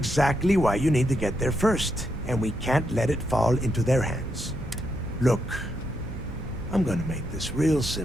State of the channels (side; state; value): right; noise; hum, 12 dB below the sound